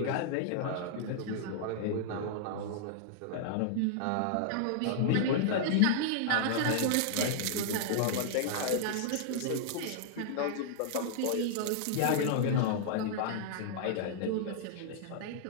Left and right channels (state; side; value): different; both; correlation -0.01